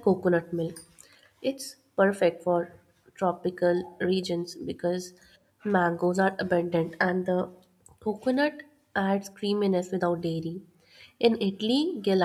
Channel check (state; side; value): identical; both; correlation 1.00